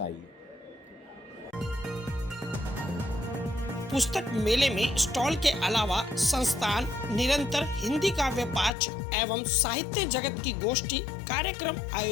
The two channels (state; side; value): drops out; right; at 8.7 s